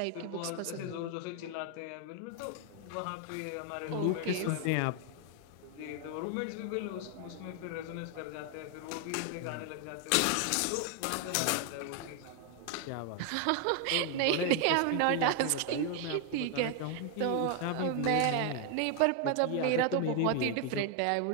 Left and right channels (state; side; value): different; both; correlation 0.01